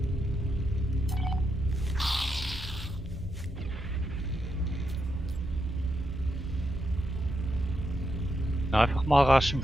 Einfach mal rasch einen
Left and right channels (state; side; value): normal; both; correlation 0.83